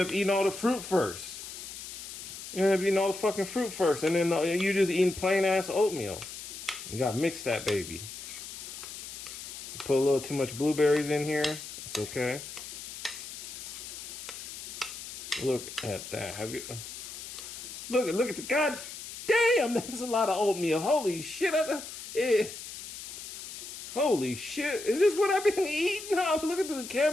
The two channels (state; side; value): noise; left; hiss, 10 dB below the sound